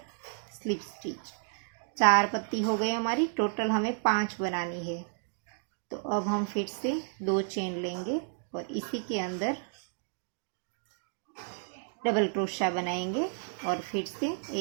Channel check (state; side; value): silent; left; 57 dB below the other